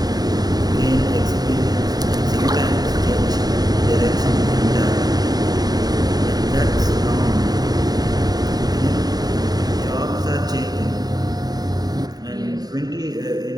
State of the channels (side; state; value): left; late; 0.19 ms